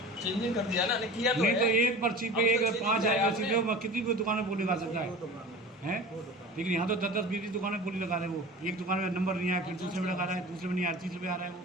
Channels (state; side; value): normal; both; correlation 0.37